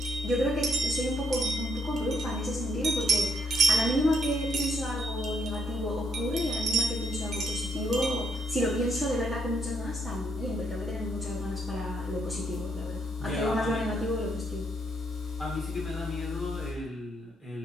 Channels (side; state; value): both; normal; correlation 0.74